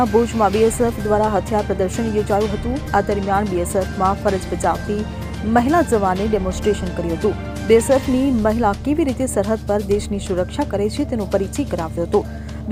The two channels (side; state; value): both; identical; correlation 1.00